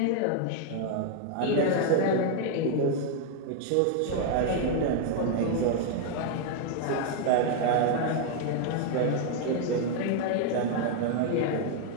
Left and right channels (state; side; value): different; both; correlation 0.00